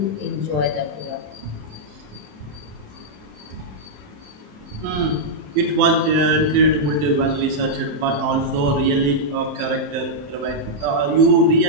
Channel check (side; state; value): left; late; 27 ms